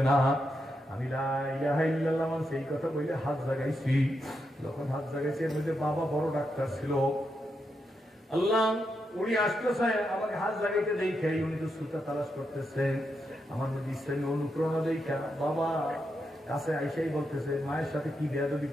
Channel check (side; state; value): both; normal; correlation 0.84